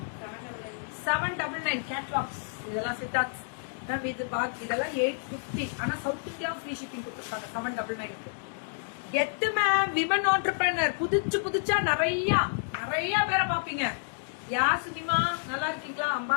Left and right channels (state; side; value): silent; right; digital silence